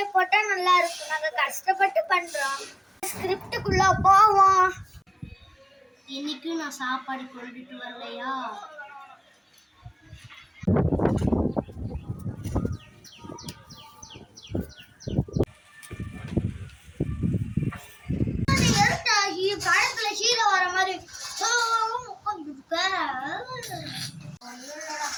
போட்டா நல்லா இருக்கும். நாங்க கஷ்டப்பட்டு பண்றோம். ஸ்கிரிப்டுக்குள்ள போவோம். இன்னைக்கு நான் சாப்பாடு கொண்டுட்டு வரலையா? படத்துல ஹீரோ வர மாதிரி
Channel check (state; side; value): identical; both; correlation 1.00